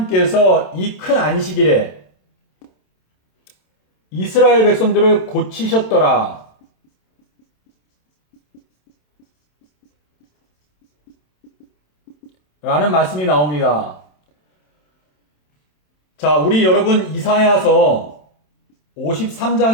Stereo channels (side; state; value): right; late; 27 ms